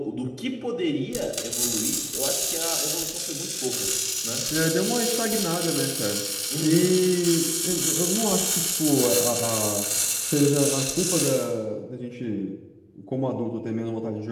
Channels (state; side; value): identical; both; correlation 1.00